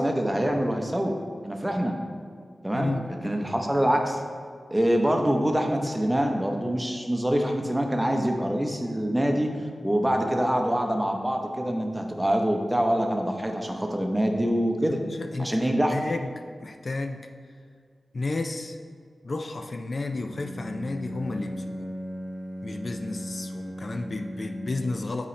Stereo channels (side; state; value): both; normal; correlation 0.97